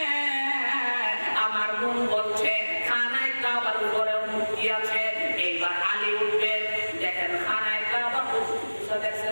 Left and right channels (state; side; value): inverted; both; correlation -1.00